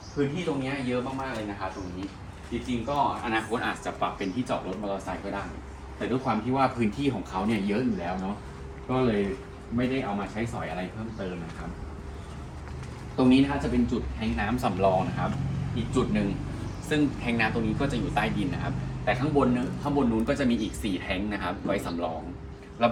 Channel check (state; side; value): identical; both; correlation 1.00